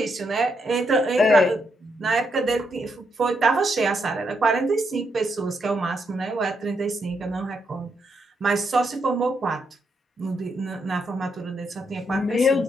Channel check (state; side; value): normal; both; correlation 0.79